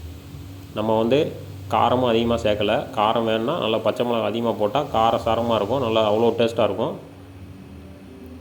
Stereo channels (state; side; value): identical; both; correlation 1.00